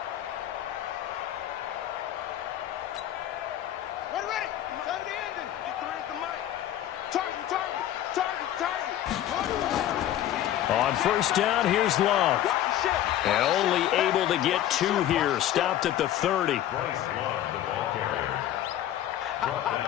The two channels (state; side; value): quieter; right; 12.2 dB